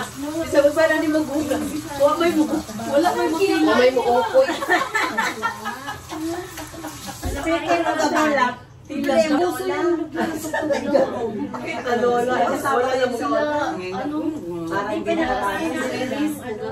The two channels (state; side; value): identical; both; correlation 1.00